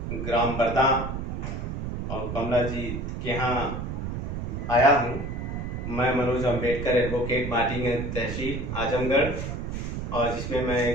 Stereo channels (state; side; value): noise; right; rumble, 4 dB below the sound